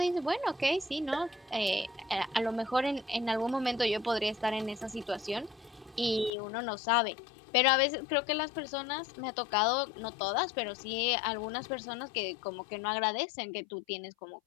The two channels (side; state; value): right; drops out; at 6.3 s